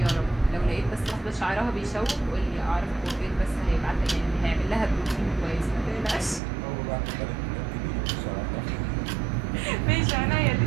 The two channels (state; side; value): drops out; left; at 6.4 s